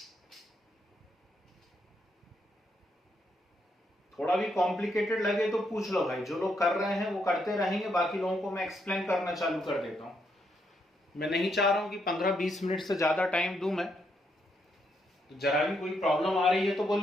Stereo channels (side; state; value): both; normal; correlation 0.77